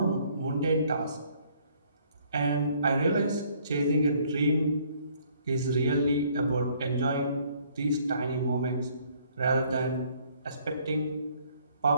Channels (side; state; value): both; inverted; correlation -0.63